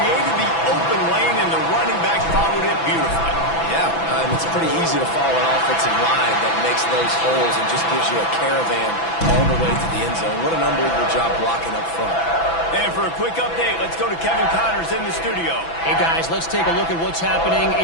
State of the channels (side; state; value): right; late; 6.0 ms